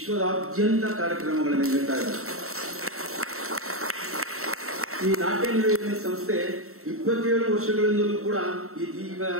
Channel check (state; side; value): late; left; 0.63 ms